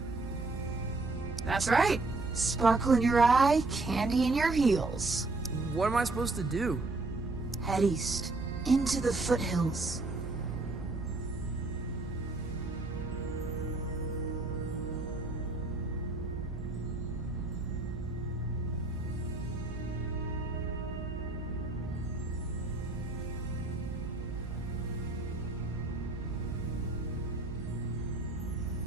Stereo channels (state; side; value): quieter; left; 3.2 dB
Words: That's right. Sparkle in your eye, candy in your heels. What am I supposed to do? Head east, into the foothills.